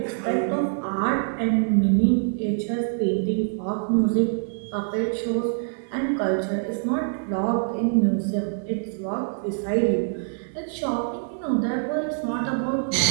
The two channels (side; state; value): left; silent; digital silence